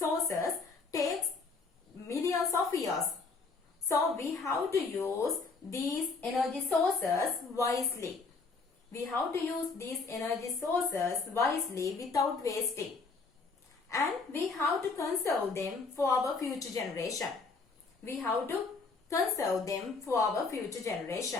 takes millions of years. So we have to use these energy sources wisely. We have to use these energy sources wisely without wasting. And we have to conserve them for our future generation. We have to conserve them for our future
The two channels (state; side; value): quieter; right; 4.3 dB